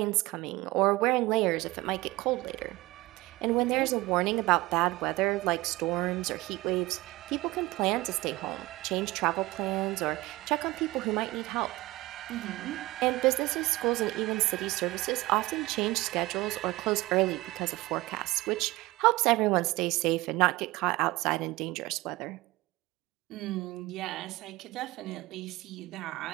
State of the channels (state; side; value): quieter; left; 20.2 dB